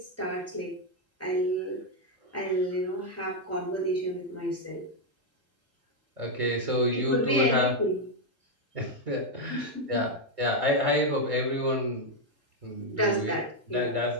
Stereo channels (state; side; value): normal; both; correlation 0.01